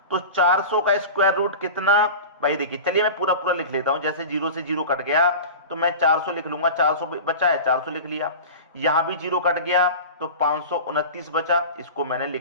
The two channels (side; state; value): both; inverted; correlation -0.32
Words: तो 400 का स्क्वायर रूट कितना भाई, देखिए चलिए मैं पूरा पूरा लिख लेता हूं। जैसे 0 से 0 कट गया तो मैं 400 लिख लूंगा, 400 बचा है 400 लिख लिया। यहां भी 0 कट गया तो 529 बचा, इसको मैंने